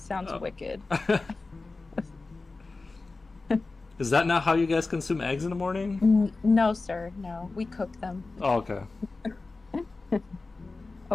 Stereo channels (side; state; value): right; quieter; 3.6 dB